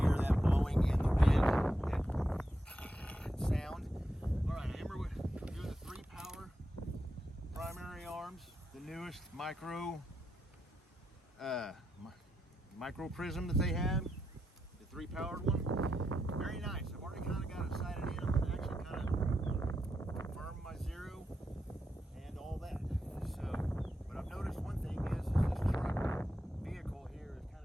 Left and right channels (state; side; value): normal; both; correlation 0.84